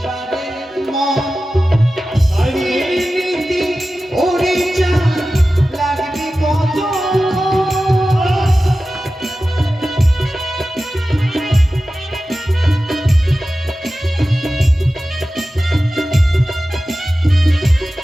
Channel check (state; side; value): normal; both; correlation 0.94